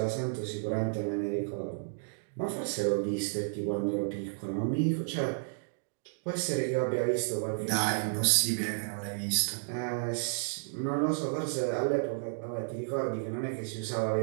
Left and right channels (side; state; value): left; silent; digital silence